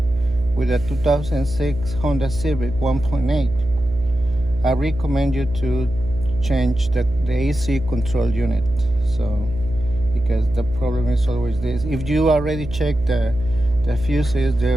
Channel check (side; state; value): right; noise; hum, 10 dB below the sound